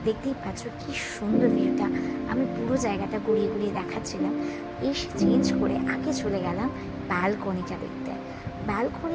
দেখতেই পাচ্ছ কি সুন্দর ভিউটা। আমি পুরো জায়গাটা ঘুরিয়ে ঘুরিয়ে দেখাচ্ছিলাম। এসে চেঞ্জ করে আগে চলে গেলাম ব্যালকনিটা দেখতে।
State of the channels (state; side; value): identical; both; correlation 1.00